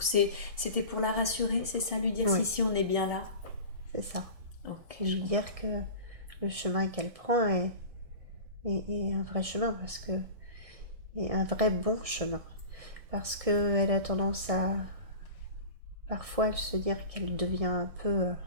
c'était pour la rassurer, c'est ça, lui dire si on est bien là? C'est ça. Ok. Et lui dire que le chemin qu'elle prend est un vrai chemin, est un vrai bon chemin. Parce qu'elle a tendance à parfois se dire qu'elle devient un peu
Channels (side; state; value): left; late; 1.7 ms